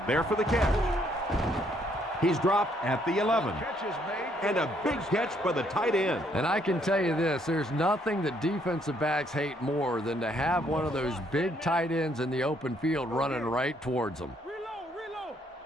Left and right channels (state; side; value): normal; both; correlation 0.69